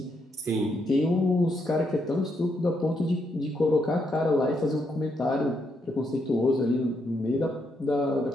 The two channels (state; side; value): normal; both; correlation 0.78